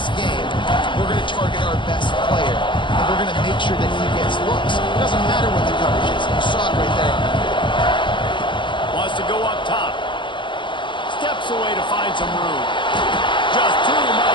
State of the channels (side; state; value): right; late; 0.23 ms